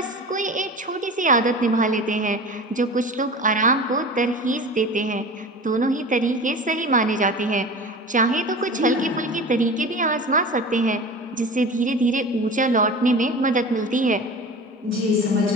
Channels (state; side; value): normal; both; correlation 0.35